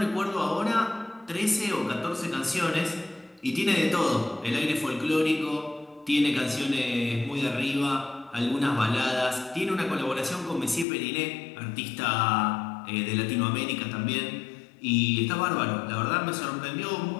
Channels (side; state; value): right; drops out; at 10.9 s